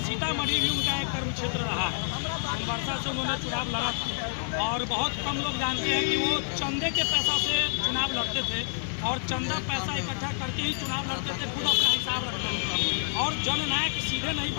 सीतामढ़ी भी उनका एक कर्म क्षेत्र रहा है। सोनवर्षा से उन्होंने चुनाव लड़ा था और बहुत कम लोग जानते हैं कि वो चंदे के पैसा से चुनाव लड़ते थे और चंदा पैसा इकट्ठा करके ही चुनाव लड़ते थे, खुद अपना हिसाब रखते थे। और जननायक सीधे नहीं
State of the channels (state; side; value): silent; right; digital silence